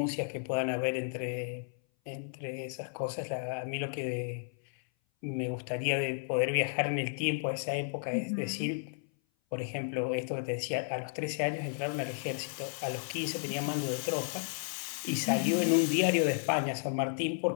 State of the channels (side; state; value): right; silent; 56 dB below the other